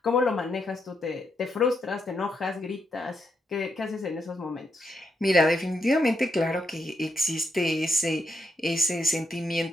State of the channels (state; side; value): normal; both; correlation 0.81